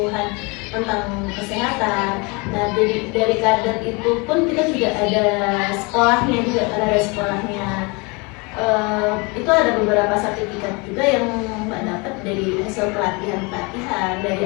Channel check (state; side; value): quieter; right; 28.7 dB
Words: tentang kesehatan. Nah dari kader itu pun kita juga ada sekolahnya itu ada beberapa sertifikat juga yang Mbak dapat dari hasil pelatihan,